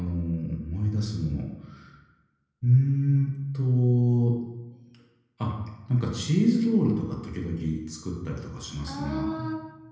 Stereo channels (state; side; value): identical; both; correlation 1.00